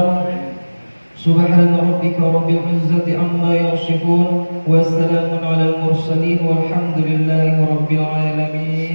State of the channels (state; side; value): inverted; both; correlation -1.00